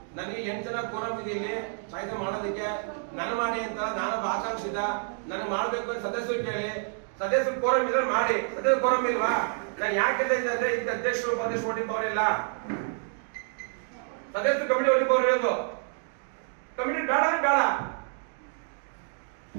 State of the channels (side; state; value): left; silent; 57 dB below the other